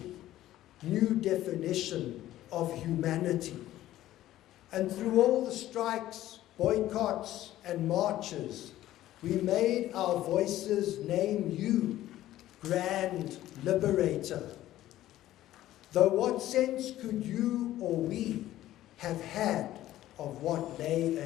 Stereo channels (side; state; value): right; quieter; 14.1 dB